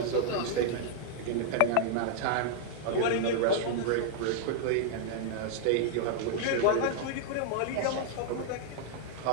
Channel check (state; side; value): different; both; correlation -0.01